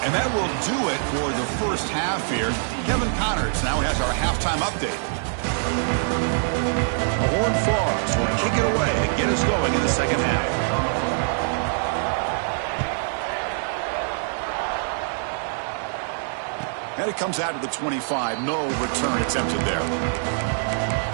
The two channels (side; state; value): left; silent; digital silence